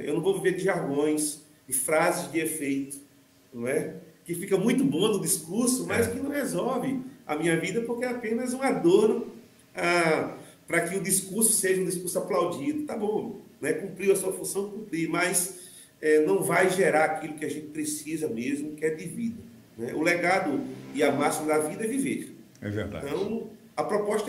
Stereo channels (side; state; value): both; identical; correlation 1.00